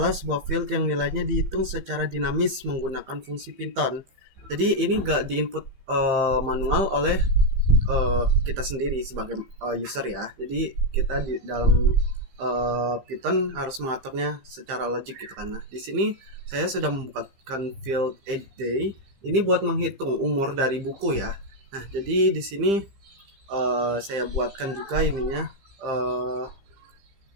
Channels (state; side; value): late; left; 15 ms